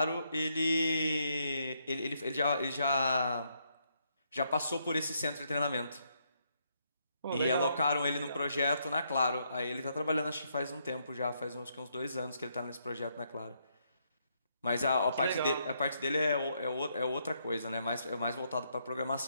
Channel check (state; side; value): inverted; both; correlation -0.75